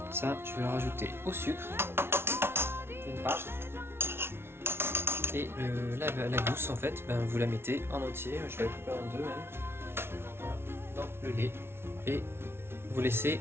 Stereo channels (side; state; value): left; late; 0.12 ms